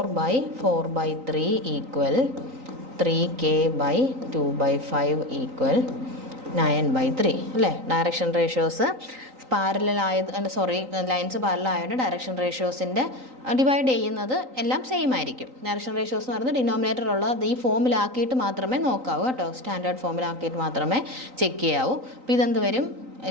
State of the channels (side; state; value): left; late; 3.9 ms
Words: = 3K/2/5 = 9/3 അല്ലേ? Direction ratios parallel lines parallel ആയതുകൊണ്ട് ഡയറക്ഷൻ റേഷ്യോസിൻ്റെ ഡിവൈഡ് ചെയ്യുന്നത് എല്ലാം സെയിം ആയിരിക്കും. ഡയറക്ഷൻ റേഷ്യോസ് എന്ന് പറയുന്നത് ഡിനോമിനേറ്ററുള്ളത് ഈ ഫോമിലാക്കിയിട്ട് മാത്രമേ നോക്കാവൂ കേട്ടോ. സ്റ്റാൻഡേർഡ് ഫോമിലാക്കിയിട്ട് മാത്രമേ ചെക്ക് ചെയ്യാവൂ. അപ്പോൾ ഇതെന്ത് വരും?